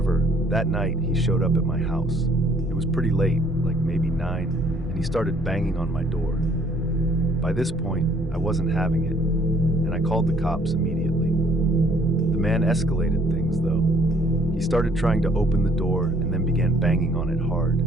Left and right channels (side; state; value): both; normal; correlation 0.62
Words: that night he showed up at my house. It was pretty late, like maybe 9, and he started banging on my door. By this point, I wasn't having it, and I called the cops immediately. The man escalated things though. He started trying to open the door and then began banging on it hard.